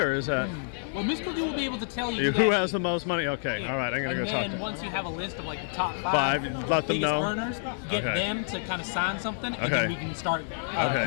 is that? Well, Miss Cookie will be able to tell you Who has the most money? Okay, all right, I'm going to go talk to them. And them. once you have a list of like the top five let them know. earners, get them to kind of sign something, and then we can start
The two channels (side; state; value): right; silent; 59 dB below the other